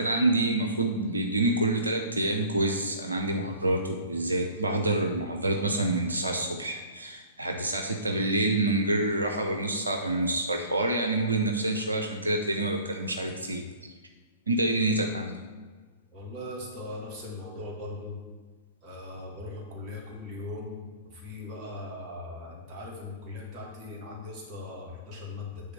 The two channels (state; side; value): inverted; both; correlation -0.49